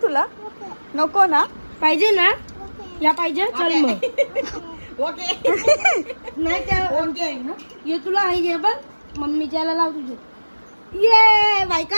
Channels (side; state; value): both; inverted; correlation -1.00